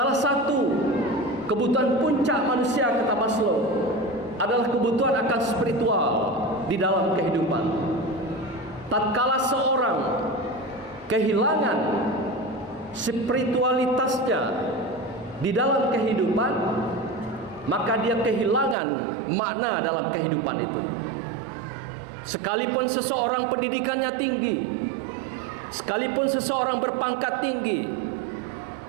satu kebutuhan puncak manusia, kata Maslow, adalah kebutuhan akan spiritual di dalam kehidupan. Tatkala seorang kehilangan spiritualitasnya di dalam kehidupan, maka dia kehilangan makna dalam kehidupan itu. Sekalipun seseorang pendidikannya tinggi, sekalipun seseorang berpangkat tinggi,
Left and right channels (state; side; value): drops out; left; at 18.8 s